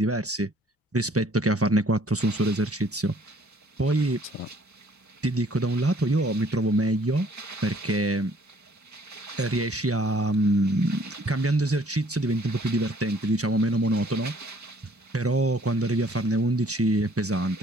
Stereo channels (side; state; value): both; normal; correlation 0.59